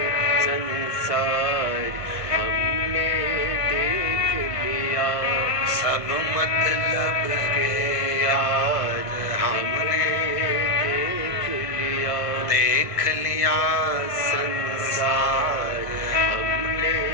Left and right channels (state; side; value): late; right; 1.5 ms